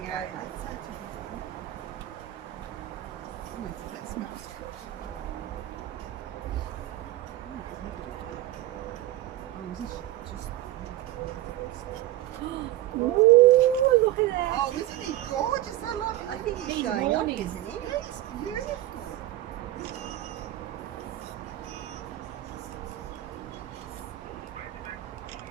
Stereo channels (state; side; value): quieter; left; 14.7 dB